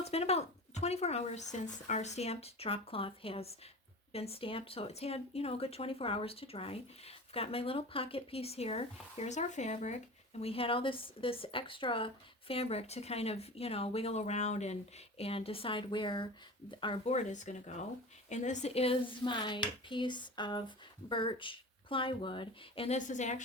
been about 24 hours since our stamped drop cloth has been stamped, so it's had, you know, a good 24 hours to dry. I've got my little pocket piece here. Here's our fabric, and we had all this extra fabric to kind of, you know, wiggle around and decide where our board is going to go. And this is my piece of birch plywood, and this is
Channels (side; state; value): both; normal; correlation 0.34